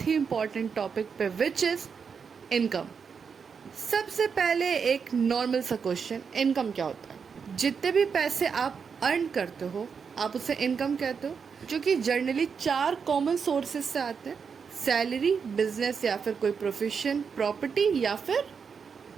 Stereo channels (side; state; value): left; quieter; 6.1 dB